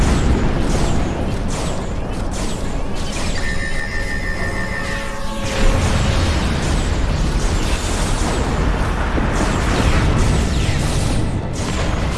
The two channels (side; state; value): both; identical; correlation 1.00